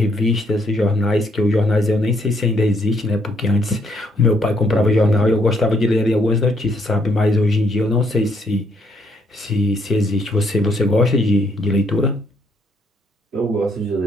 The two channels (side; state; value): both; normal; correlation 0.71